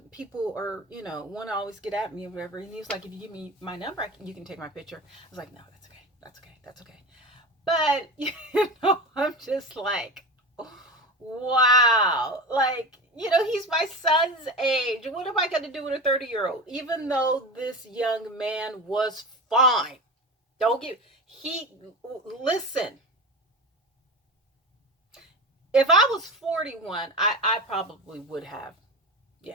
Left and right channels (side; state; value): both; normal; correlation 0.27